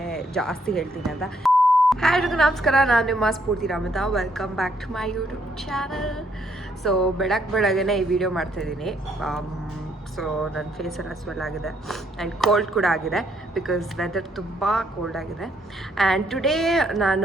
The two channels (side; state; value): both; normal; correlation 0.71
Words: ಜಾಸ್ತಿ ಹೇಳ್ತೀನಿ ಅಂತ. ಹಾಯ್ ಎಲ್ರಿಗೂ ನಮಸ್ಕಾರ, ನಾನು ನಿಮ್ಮ Spoorthi Ramatha. Welcome back to my YouTube channel. So ಬೆಳಗ್ಗೆನೇ ಈ ವಿಡಿಯೋ ಮಾಡ್ತಾಯಿದ್ದೀನಿ. ಸೊ ನನ್ನ ಫೇಸೆಲ್ಲ ಸ್ವೆಲ್ ಆಗಿದೆ ಆ್ಯಂಡ್ ಕೋಲ್ಡ್ ಕೂಡ ಆಗಿದೆ, ಬಿಕಾಸ್ ವೆದರ್ ತುಂಬ ಕೋಲ್ಡ್ ಆಗಿದೆ. ಆ್ಯಂಡ್ ಟುಡೇ